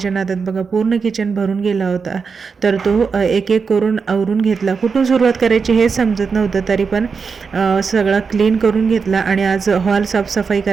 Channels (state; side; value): quieter; left; 5.4 dB